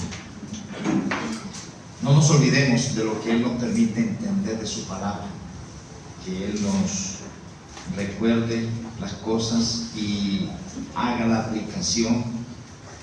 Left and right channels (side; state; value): both; identical; correlation 1.00